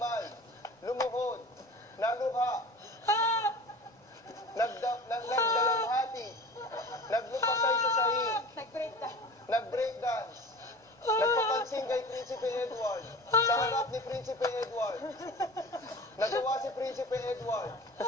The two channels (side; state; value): both; normal; correlation 0.37